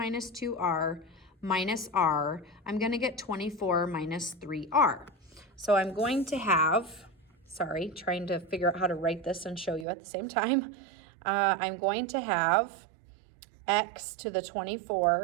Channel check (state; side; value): drops out; left; at 9.9 s